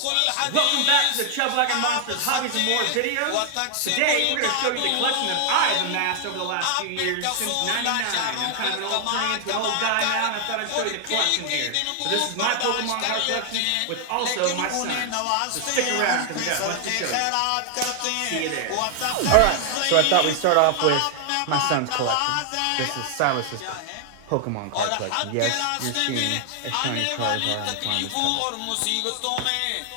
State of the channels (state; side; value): different; both; correlation 0.00